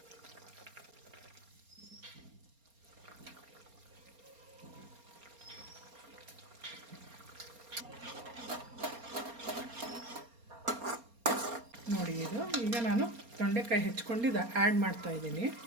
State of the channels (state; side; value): late; left; 4.3 ms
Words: ನೋಡಿ, ಇದು ಈಗ ನಾನು ತೊಂಡೆಕಾಯಿ ಹೆಚ್ಕೊಂಡಿದ್ದು ಆ್ಯಡ್ ಮಾಡ್ತಾಯಿದ್ದೀನಿ.